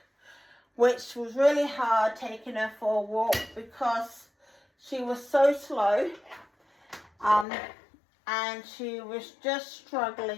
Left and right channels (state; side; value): drops out; right; at 7.5 s